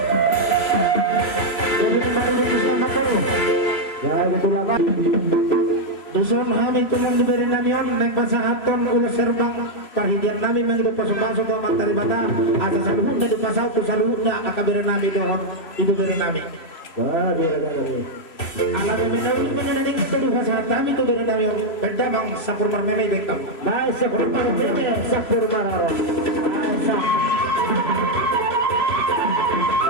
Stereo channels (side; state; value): right; late; 3.0 ms